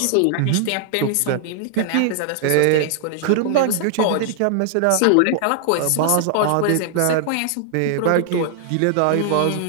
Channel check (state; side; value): different; both; correlation 0.00